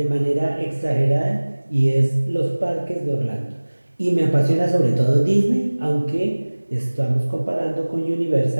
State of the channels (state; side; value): inverted; both; correlation -1.00